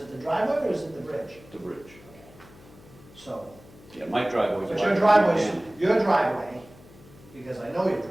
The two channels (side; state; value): left; noise; hum, 23 dB below the sound